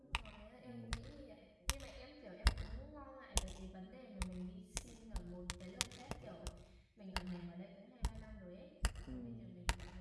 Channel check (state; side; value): identical; both; correlation 1.00